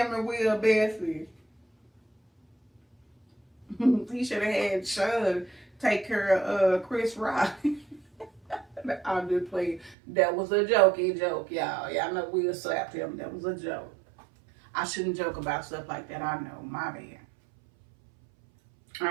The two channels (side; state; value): left; drops out; at 10.0 s